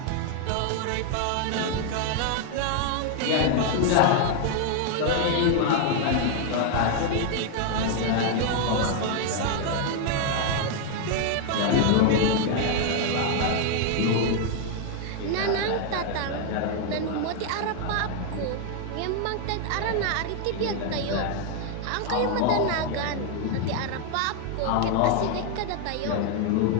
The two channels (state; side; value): different; both; correlation 0.00